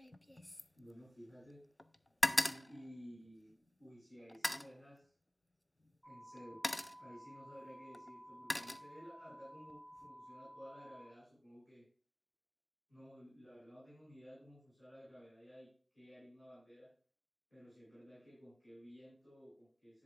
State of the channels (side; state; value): both; normal; correlation 0.97